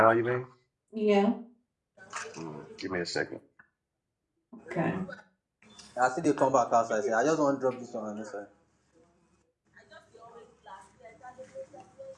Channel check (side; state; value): both; identical; correlation 1.00